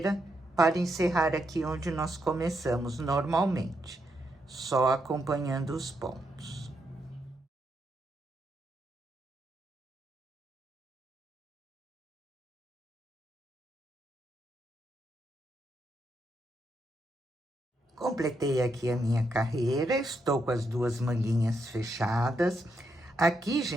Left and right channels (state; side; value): normal; both; correlation 0.81